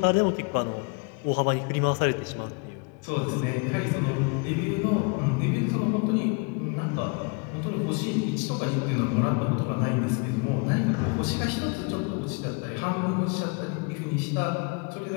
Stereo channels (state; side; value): quieter; right; 32.7 dB